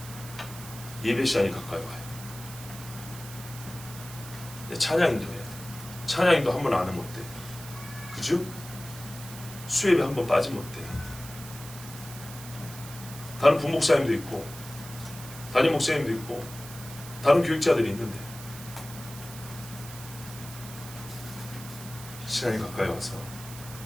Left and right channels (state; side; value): noise; right; hiss, 14 dB below the sound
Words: 예배 시간이 가까이 와요. 찬양인도 해야 돼. 찬양인도 한 번 안 하면 어때? 그죠? 수예배 한 번 빠지면 어때? 다른 부목사님도 있고 담임 목사님도 있고 다른 교육자들이 있는데 시간이 가까이 와서